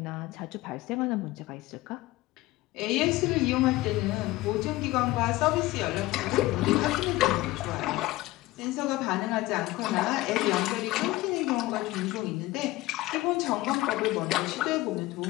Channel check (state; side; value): quieter; right; 18.5 dB